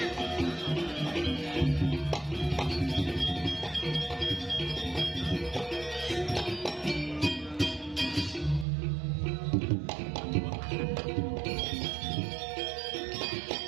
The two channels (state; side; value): drops out; left; at 8.7 s